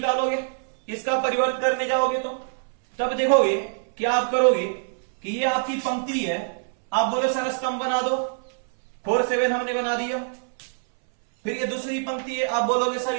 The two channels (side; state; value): left; silent; 62 dB below the other